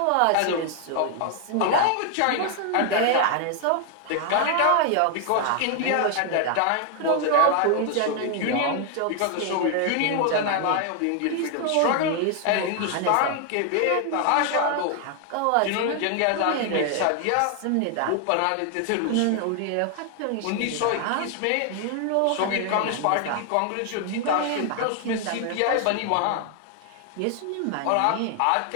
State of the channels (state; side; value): different; both; correlation 0.00